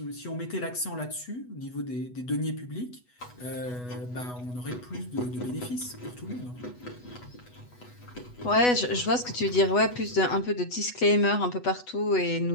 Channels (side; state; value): right; late; 8.1 ms